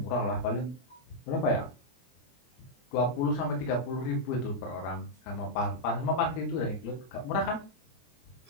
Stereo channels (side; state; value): right; late; 23 ms